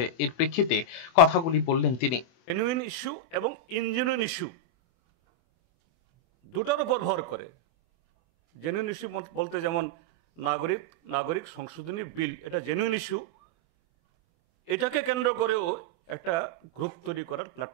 এর প্রেক্ষিতে কথাগুলি বললেন তিনি। জেনুইন ইস্যু এবং ইনজেনুইন ইস্যু দুটার উপর ভর করে। জেনুইন ইস্যু বলতে যেমন নাগরিক সংশোধনী বিল, এটা জেনুইন ইস্যু। এটাকে কেন্দ্র করেও একটা গ্রুপ তৈরি করার,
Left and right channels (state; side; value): late; right; 24 ms